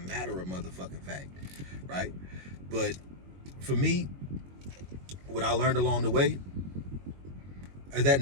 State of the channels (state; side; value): late; left; 22 ms